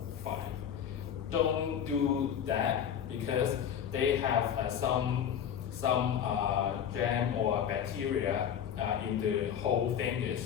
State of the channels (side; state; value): right; quieter; 8.8 dB